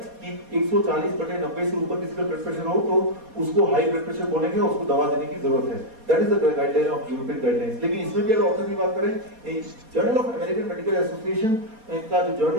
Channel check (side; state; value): left; late; 4.2 ms